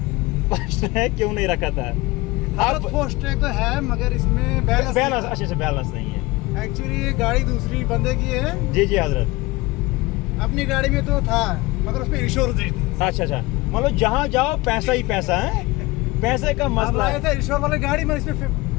फास्टैग क्यों नहीं रखा था? आप फास्टैग तो है मगर इसमें बैलेंस अच्छे से बैलेंस नहीं है। एक्चुअली ये गाड़ी दूसरी बंदे की है। जी जी हजरत, अपनी गाड़ी में तो था मगर उसमें इंश्योरेंस नहीं थी। अच्छा, मतलब जहाँ जाओ पैसा ही पैसा है, पैसे का मसला है। था इंश्योर वाली गाड़ी में, इसमें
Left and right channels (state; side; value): quieter; right; 21.6 dB